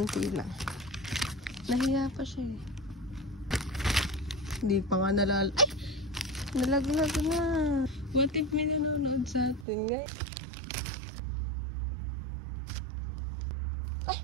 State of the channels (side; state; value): left; drops out; at 9.7 s